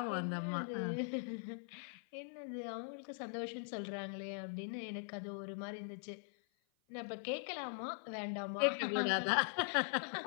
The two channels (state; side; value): silent; right; 50 dB below the other